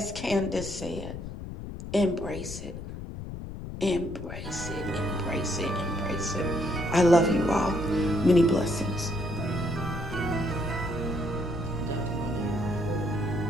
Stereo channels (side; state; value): left; noise; rumble, 9 dB below the sound